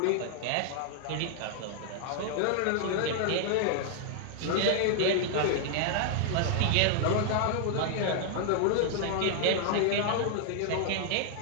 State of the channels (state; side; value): different; both; correlation -0.01